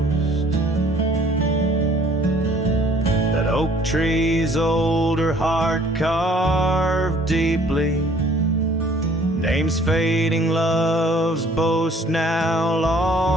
That oak tree's older heart carved deeply, names fading, love's boast now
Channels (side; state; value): both; normal; correlation 0.56